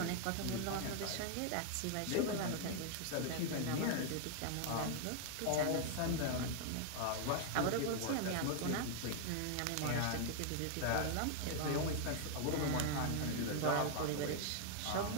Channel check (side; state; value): both; different; correlation 0.00